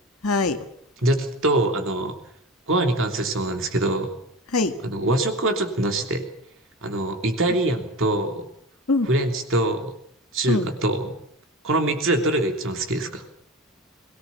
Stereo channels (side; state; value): both; normal; correlation 0.30